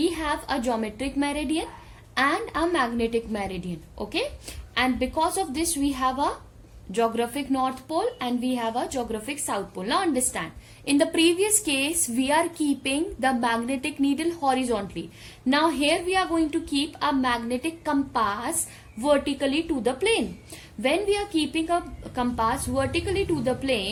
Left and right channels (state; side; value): identical; both; correlation 1.00